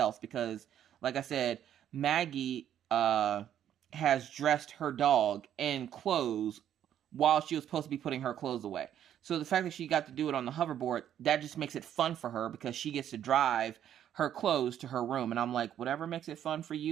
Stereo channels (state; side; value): quieter; left; 10.4 dB